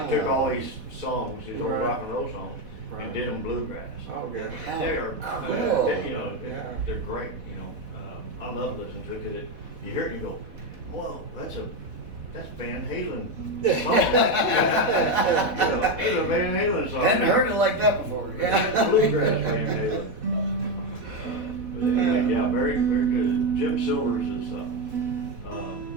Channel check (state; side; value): late; left; 4.1 ms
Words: They took all these songs, these old Right. rock and roll songs, Right. and did them bluegrass. Oh, good. They are, Cool. you know, Yeah. they're great, you know. I love listening to it because you hear it and you go, whoa, that's Van Halen song. You know, it's a Van Halen song. Hadn't heard it like that before. Yeah, bluegrass Van Halen. But anyway, yeah, very, very good. Jim Silvers is,